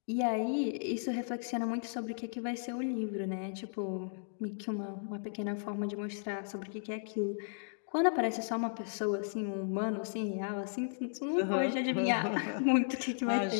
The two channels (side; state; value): right; silent; digital silence